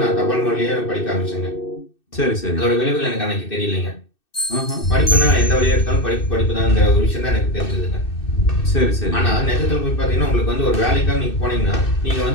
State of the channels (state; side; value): late; right; 2.6 ms